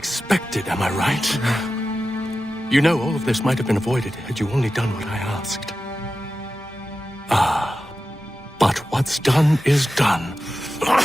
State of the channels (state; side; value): normal; both; correlation 0.93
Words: am I right? You know, all of this might have been avoided had you only done what I asked. Ah, but what's done is done.